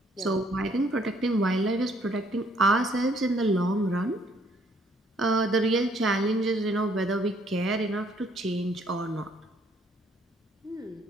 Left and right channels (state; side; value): normal; both; correlation 0.65